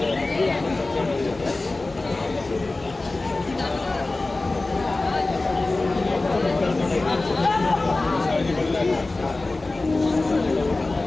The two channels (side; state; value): right; quieter; 3.2 dB